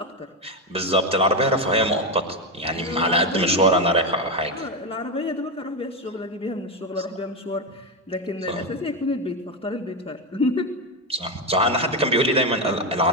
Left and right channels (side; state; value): both; normal; correlation 0.10